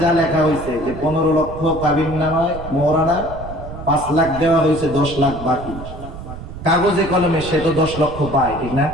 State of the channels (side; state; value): right; noise; rumble, 11 dB below the sound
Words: যা লেখা হয়েছে যে 15 লক্ষ কাবিননামায় মোহরানা, 5 লাখ দেওয়া হয়েছে, 10 লাখ বাকি। কাগজে কলমে সে তো 10 লক্ষ পায়, ঠিক না?